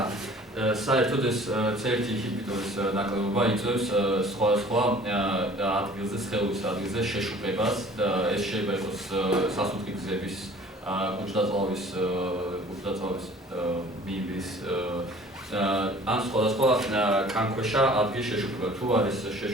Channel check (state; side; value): normal; both; correlation 0.49